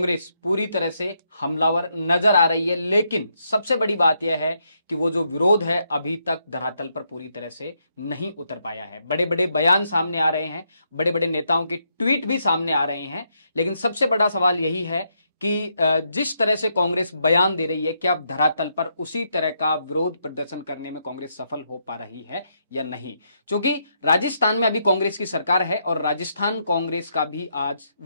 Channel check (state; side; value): inverted; both; correlation -0.78